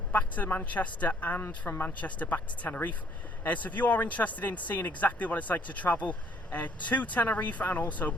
back to Manchester and from Manchester back to Tenerife. So if you are interested in seeing exactly what it's like to travel to Tenerife and also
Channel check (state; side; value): normal; both; correlation 0.64